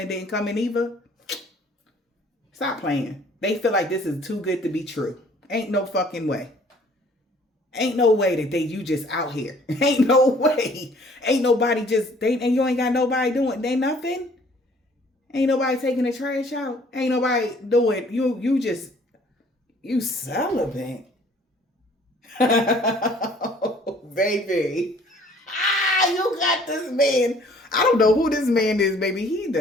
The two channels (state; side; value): normal; both; correlation 0.56